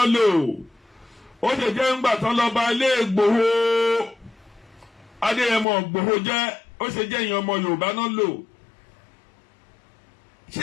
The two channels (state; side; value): drops out; right; at 5.7 s